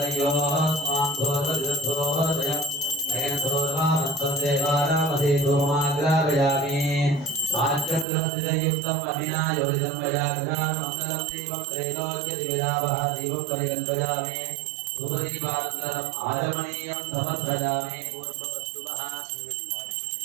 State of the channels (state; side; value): drops out; left; at 8.1 s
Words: स्वाम दोरदोरदोरदयं नयन दोरवामत्वदेवानामधि दोमाग्रावयामि साच्चक्रमतियुक्तम् अभिनायोजितं वयाग्रामङ्गलं दीपं त्रैलोक्यदिविदावः दीपं परिकल्पयामि धूपदीपानन्तरम् आचमनीयं समर्पयामि पूर्ववस्तुवः